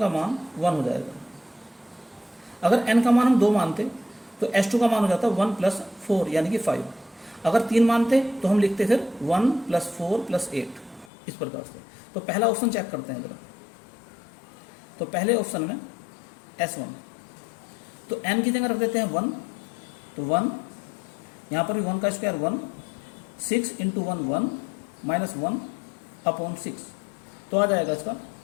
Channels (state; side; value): drops out; right; at 11.1 s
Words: मान 1 हो जाएगा। अगर n का मान हम 2 मानते तो S2 का मान हो जाता 1 + 4 यानी कि 5। अगर 3 मानते तो हम लिखते फिर 1 + 4 + 8 इस प्रकार से। तो पहला ऑप्शन चेक करते हैं जरा। तो पहले ऑप्शन में S1, तो n की जगह रख देते हैं 1, तो 1, यहाँ पर भी 1 का स्क्वायर 1, 6 × 1 1 -1 अपॉन 6, तो आ जाएगा इसका